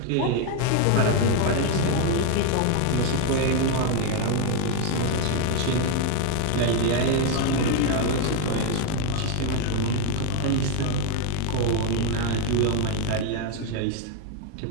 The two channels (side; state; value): both; different; correlation 0.01